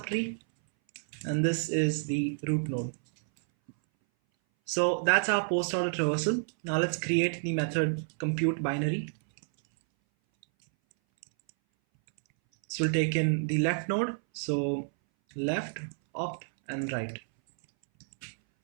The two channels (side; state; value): left; silent; 58 dB below the other